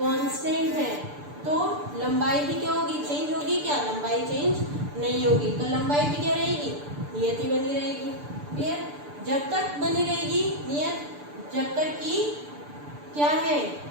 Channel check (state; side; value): late; left; 6.8 ms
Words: है तो लंबाई भी क्या होगी चेंज होगी, क्या लंबाई चेंज नहीं होगी, तो लंबाई भी क्या रहेगी नियत ही बनी रहेगी। क्लियर, जब तक बनी रहेगी नियत, जब तक कि क्या है